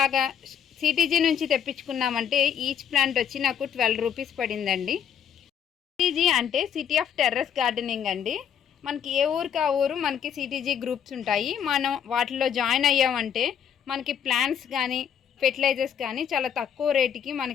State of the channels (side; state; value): right; quieter; 8.5 dB